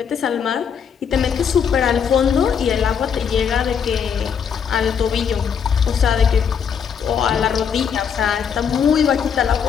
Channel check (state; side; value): quieter; right; 7.2 dB